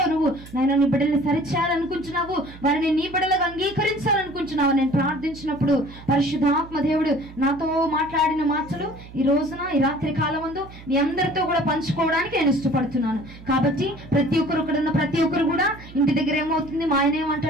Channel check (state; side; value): noise; right; hum, 18 dB below the sound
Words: నువ్వు నాయన నీ బిడ్డల్ని సరిచేయాలనుకుంటున్నావు, వారిని నీ బిడ్డలుగా అంగీకరించాలనుకుంటున్నావు. నేను ప్రార్థించినప్పుడు పరిశుద్ధాత్మ దేవుడు నాతో మాట్లాడిన మాటలు ఈ రోజున ఈ రాత్రి కాలం ముందు మీ అందరితో కూడా పంచుకోవడానికి నేను ఇష్టపడుతున్నాను. కాబట్టి ప్రతి ఒక్కరు ఇక్కడ ఉన్న ప్రతి ఒక్కరు కూడా ఇంటి దగ్గర ఏమవుతుంది, మా ఆయన